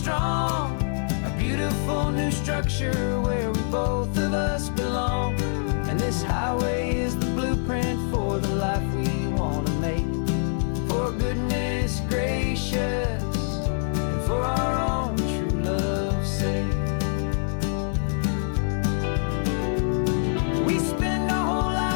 A beautiful new structure where we both of us belong. And this highway is the blueprint for the life we want to make. For goodness gracious, and for our own true love's sake. We spend our whole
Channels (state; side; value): silent; right; digital silence